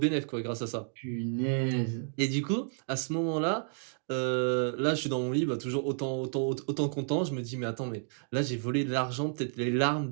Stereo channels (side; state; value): left; silent; 57 dB below the other